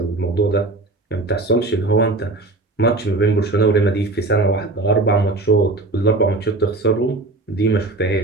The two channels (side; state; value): left; quieter; 3.1 dB